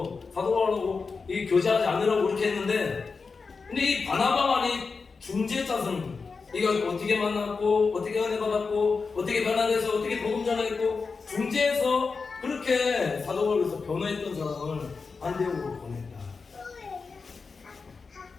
사도 바울하고 이 교제하지 않으라고 그렇게 했는데, 근데 이 바나바만이 중재자선, 이가 어떻게 만났고 어떻게 은혜 받았고 어떻게 변화돼서 어떻게 복음 전했고 중재해서 그렇게 사도 바울에서 변화했던 사람을 안디옥으로 보냈다.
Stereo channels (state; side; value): quieter; right; 4.7 dB